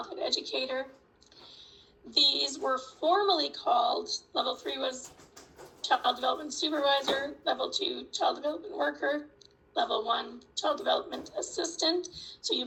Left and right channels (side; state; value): both; identical; correlation 1.00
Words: Educator. These were formally called, Level 3 was Child Development Supervisor, Level 2 Child Development Worker, Level 1 Child Development Assistant. So you